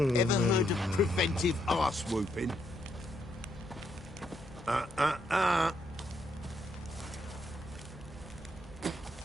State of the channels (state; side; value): normal; both; correlation 0.76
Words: heard of preventive arse whooping?